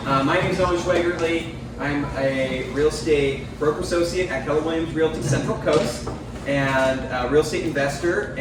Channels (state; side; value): identical; both; correlation 1.00